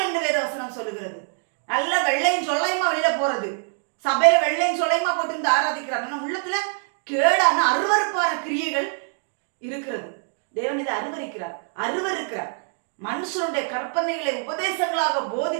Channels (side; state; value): left; silent; 57 dB below the other